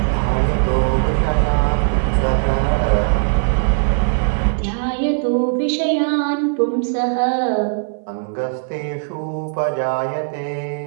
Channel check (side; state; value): left; silent; 62 dB below the other